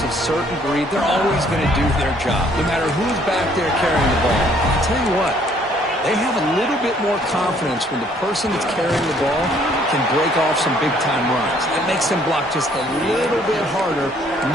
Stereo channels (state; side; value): normal; both; correlation 0.62